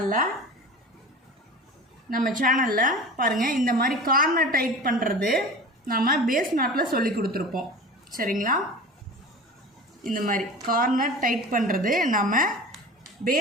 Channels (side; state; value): both; normal; correlation 0.36